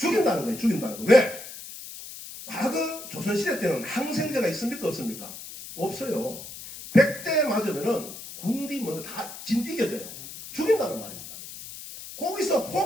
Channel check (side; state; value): left; noise; hiss, 12 dB below the sound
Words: 거예요. 죽인다는 거. 왜? 과거 조선시대 때는 항생제가 있습니까? 없습니까? 없어요. 100대 맞으면은 군디 먼저 다 이겨져요. 죽인다는 말입니다. 거기서